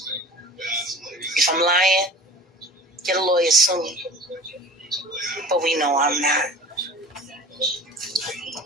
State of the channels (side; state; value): both; normal; correlation 0.41